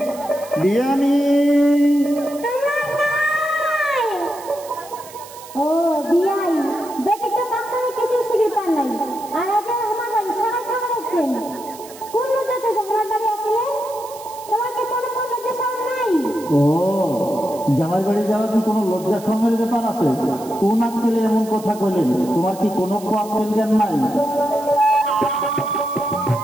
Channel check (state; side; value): noise; right; hiss, 18 dB below the sound